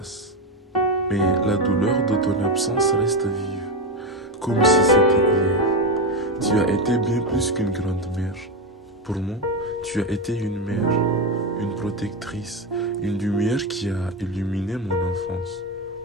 mais la douleur de ton absence reste vive, comme si c'était hier. Tu as été bien plus qu'une grand-mère. Pour moi, tu as été une mère, une protectrice, une lumière qui a illuminé mon enfance.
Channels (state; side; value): normal; both; correlation 0.13